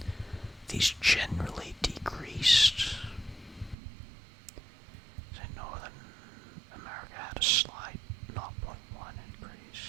These generally decreased. Say Northern America had a slight 0.1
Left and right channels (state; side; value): drops out; left; at 3.8 s